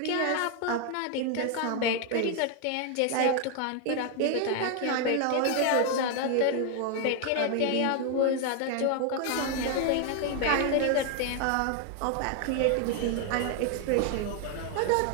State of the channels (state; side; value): different; both; correlation 0.01